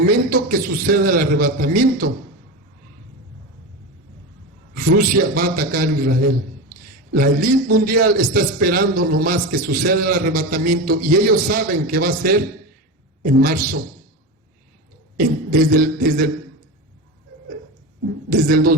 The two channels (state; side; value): normal; both; correlation 0.22